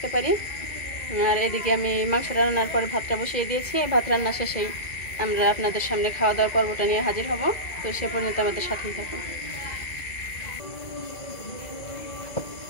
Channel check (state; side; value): late; right; 1.8 ms